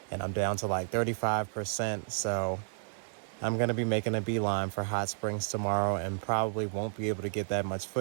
and I'm down to like 35%. So I'm going to be making a beeline for Hot Springs tomorrow and probably won't be able to get that much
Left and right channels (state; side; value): silent; left; digital silence